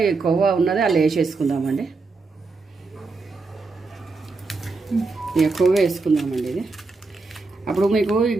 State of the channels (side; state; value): left; quieter; 3.9 dB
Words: ఈ కొవ్వ ఉన్నది అలా వేసేసుకుందామండి. ఇక కొవ్వ వేసుకుందామండి ఇది. అప్పుడు మీకు ఈ